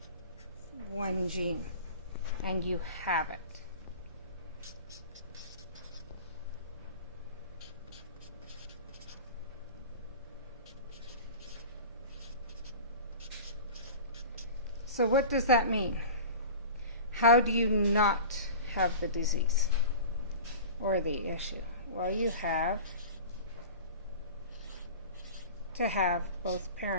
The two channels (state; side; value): inverted; both; correlation -0.36